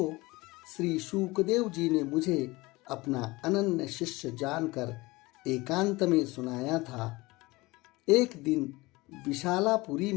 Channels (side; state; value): right; quieter; 21.9 dB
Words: श्री शुकदेव जी ने मुझे अपना अनन्य शिष्य जानकर एकांत में सुनाया था। एक दिन विशालापुरी